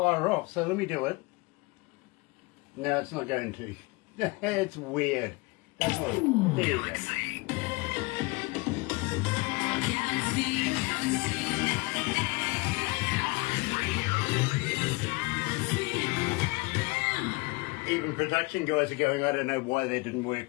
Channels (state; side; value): quieter; right; 25.8 dB